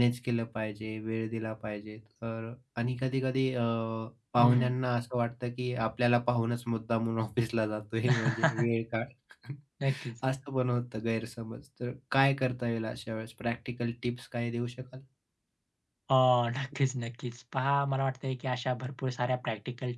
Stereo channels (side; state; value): both; identical; correlation 1.00